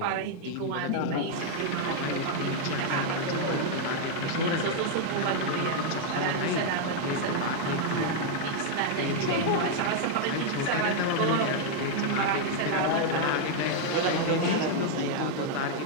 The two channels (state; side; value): different; both; correlation 0.00